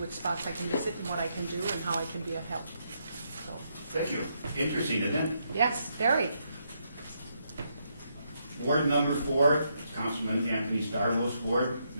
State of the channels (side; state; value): both; inverted; correlation -0.78